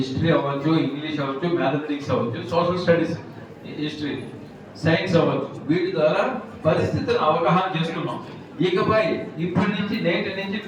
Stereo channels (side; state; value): both; identical; correlation 1.00